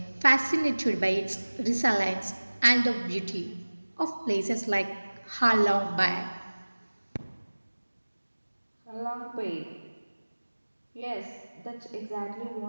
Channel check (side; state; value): both; inverted; correlation -1.00